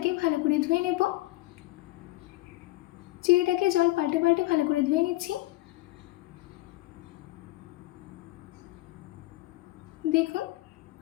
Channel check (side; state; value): right; quieter; 19.0 dB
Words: ভালো করে ধুয়ে নেব। চিড়েটাকে জল পাল্টে পাল্টে ভালো করে ধুয়ে নিচ্ছি। দেখুন,